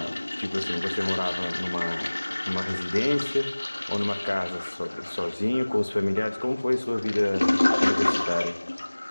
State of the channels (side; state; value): both; inverted; correlation -1.00